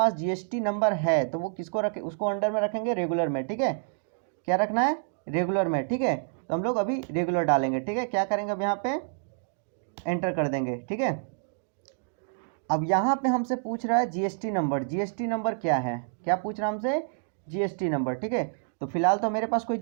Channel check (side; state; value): left; silent; digital silence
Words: GST नंबर है तो वो किसको रखे, उसको अंडर में रखेंगे, रेगुलर में, ठीक है। क्या रखना है? रेगुलर में, ठीक है। तो हम लोग अभी रेगुलर डालेंगे, ठीक है। क्या करेंगे अब यहाँ पे? एंटर कर देंगे, ठीक है। अब यहाँ पे हमसे पूछ रहा है GST नंबर, GST नंबर क्या है, क्या पूछ रहा है हमसे? GST नंबर, ठीक है। तो फिलहाल तो मेरे पास कोई